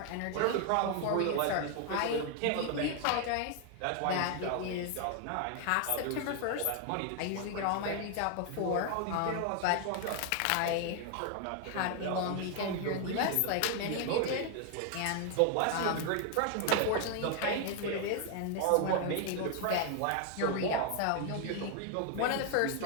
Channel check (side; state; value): both; different; correlation 0.00